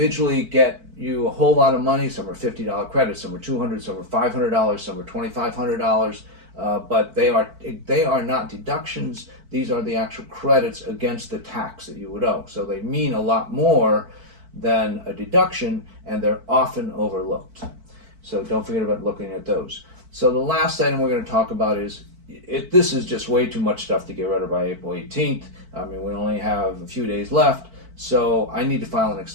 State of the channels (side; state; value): left; late; 4.5 ms